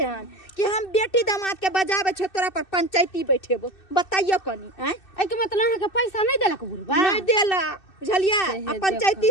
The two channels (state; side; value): late; right; 2.6 ms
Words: हन कि हम बेटी दामाद के बजावे छ तोरा पर पंचायती बैठेबो बताइयो कनी हैं ए के मतलब अहाँ के पैसा नहीं देलक बुढ़वा नहीं देला बुझलिए आ पंचायती